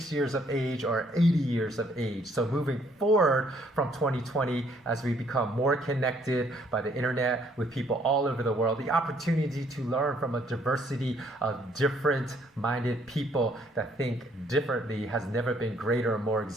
years of age or 80 years of age. So moving forward from 2020, as we become more connected by the internet with people all over the world, the opportunity to learn from a diversity of different-minded people that think differently has never been greater or more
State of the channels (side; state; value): both; normal; correlation 0.65